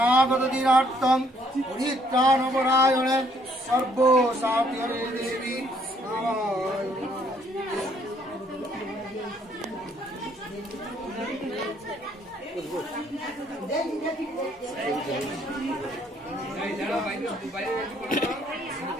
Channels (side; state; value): both; normal; correlation 0.66